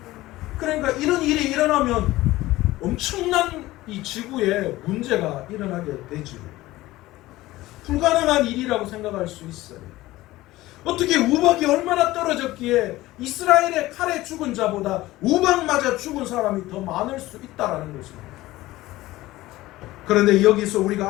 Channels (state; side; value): quieter; right; 17.5 dB